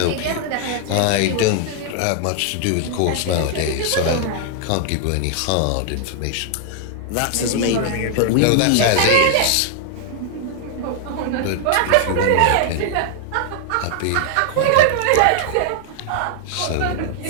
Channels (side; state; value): both; different; correlation 0.00